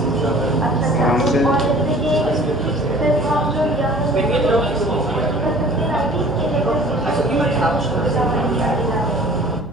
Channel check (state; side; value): normal; both; correlation 0.48